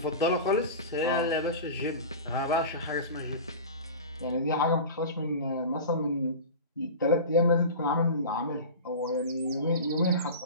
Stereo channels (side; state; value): both; inverted; correlation -0.31